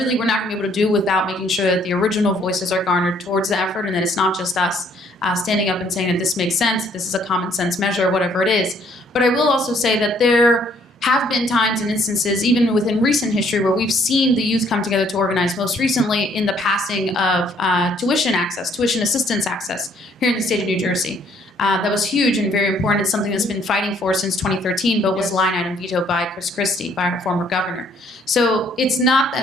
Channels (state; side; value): normal; both; correlation 0.64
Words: we're not going to be able to do without making sure that the original voices are garnered towards the effort, and that it's not just us standing up and saying that this makes sense, this is a common sense measure, whatever it is. But I will also say that there have been times and instances, even within recent history, where we've seen the youth come together to organize, most recently in the passing of tuition assistance access here in the state of New Jersey. That was huge and very important. It's something that's been fighting for since 2013, but was line item vetoed by Chris Christie, by our former governor. So it's not